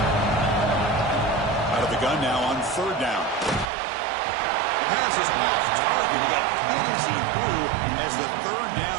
Out of the gun now on third down. The pass is off target. He got hit as he threw as the third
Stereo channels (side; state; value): left; drops out; at 3.7 s